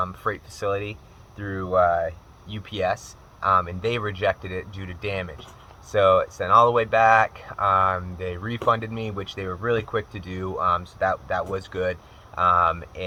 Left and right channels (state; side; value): identical; both; correlation 1.00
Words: freight facility, through UPS, and they rejected it due to damage. So it sent all the way back. They refunded me, which they were really quick to do, so that was good.